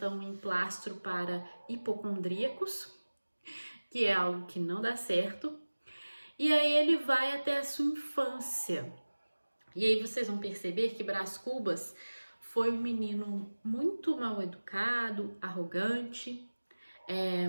um emplastro para hipocondríacos, que é algo que não dá certo. E aí ele vai até a sua infância. E aí vocês vão perceber que Brás Cubas foi um menino muito mal educado, arrogante,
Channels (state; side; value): inverted; both; correlation -1.00